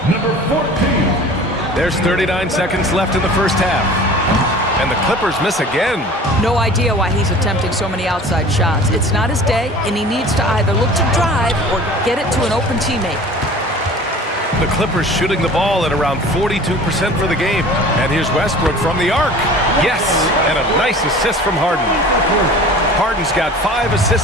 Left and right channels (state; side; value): normal; both; correlation 0.43